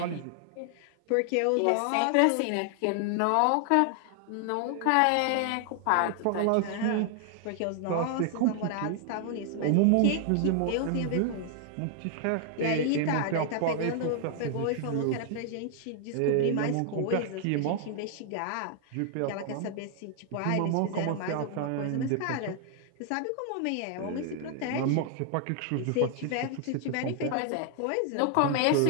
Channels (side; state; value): both; different; correlation 0.00